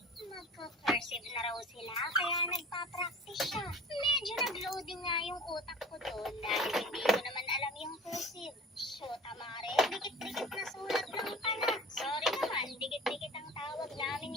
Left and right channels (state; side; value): normal; both; correlation 0.41